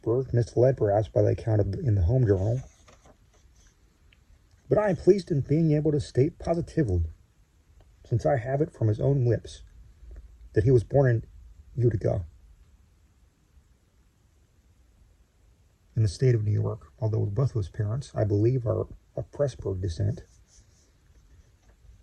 misled perhaps by the account in the home journal. But I am pleased in being able to state positively, since I have it from his own lips, that he was born in Utica, in the state of New York, although both of his parents, I believe, are of Pressburg descent.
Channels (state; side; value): identical; both; correlation 1.00